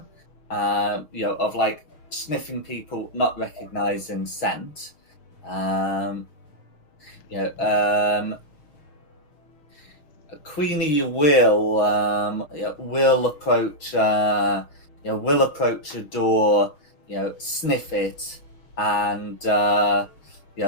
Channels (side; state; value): right; late; 6.4 ms